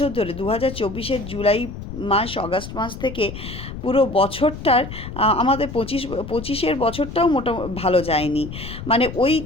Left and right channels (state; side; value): noise; left; rumble, 10 dB below the sound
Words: ধরে 2024-এর জুলাই মাস, অগাস্ট মাস থেকে পুরো বছরটার আমাদের 25-এর বছরটাও ভালো যায়নি। মানে ওই